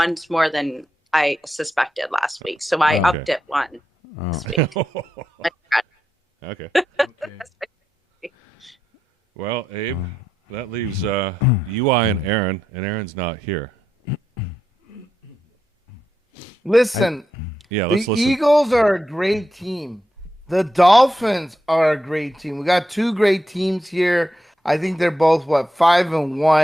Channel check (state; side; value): normal; both; correlation 0.85